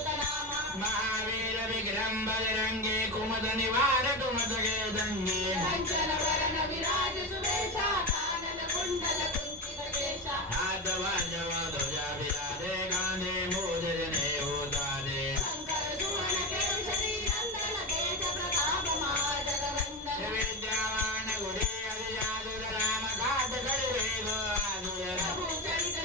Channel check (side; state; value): both; normal; correlation 0.18